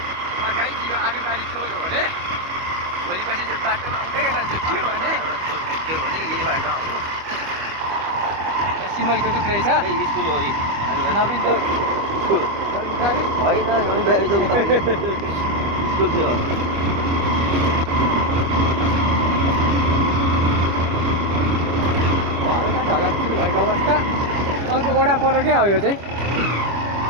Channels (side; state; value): left; late; 25 ms